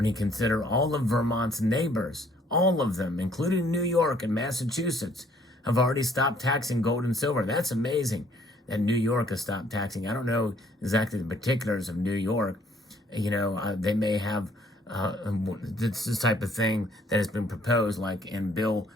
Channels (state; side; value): normal; both; correlation 0.63